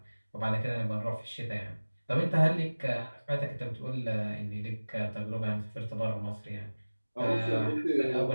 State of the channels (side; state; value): both; inverted; correlation -1.00